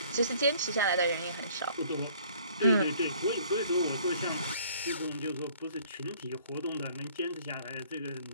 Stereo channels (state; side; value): inverted; both; correlation -0.58